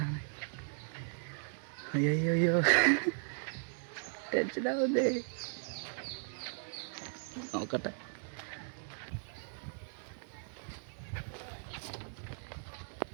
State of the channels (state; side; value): silent; left; digital silence